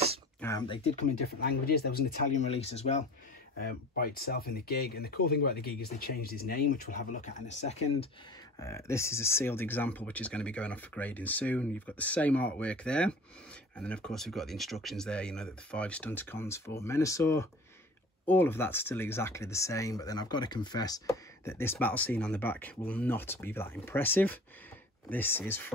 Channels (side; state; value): both; normal; correlation 0.42